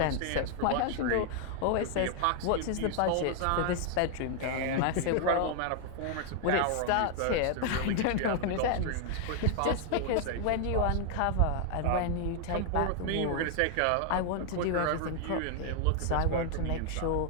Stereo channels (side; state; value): both; different; correlation 0.00